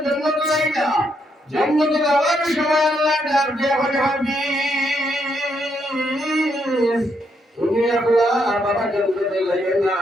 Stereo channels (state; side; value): normal; both; correlation 0.76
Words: জান্নাত লাইনা জান্নাতে যাওয়ার সময় আল্লাহ ডাক দিয়ে বলে হাফিজ তুমি আল্লাহ বাবা জান্নাতে যাইও না